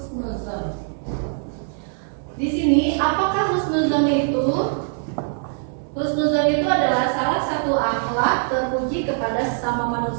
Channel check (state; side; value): silent; left; digital silence